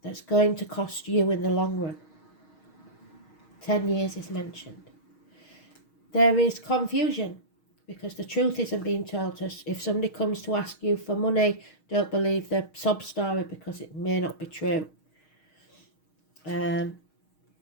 that's going to cost you in the long run. 10 years is mentioned. There is confusion because the truth isn't being told us. If somebody comes to ask you for money, don't believe the sob story because it may not be true.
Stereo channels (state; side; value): late; right; 6.4 ms